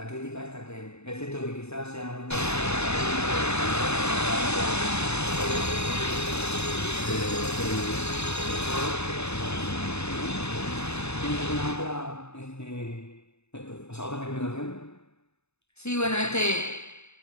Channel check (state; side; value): late; right; 0.80 ms